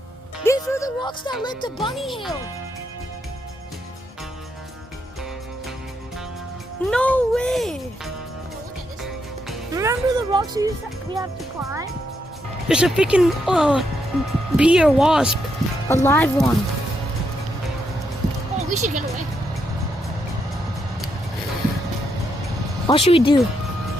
These were the rocks that led to Bunny Hill. No way! look at this. Remember the rocks we have to climb? There's a freaking bee or wasp, a live one. Oh, we should get away. What should we do?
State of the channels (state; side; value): normal; both; correlation 0.79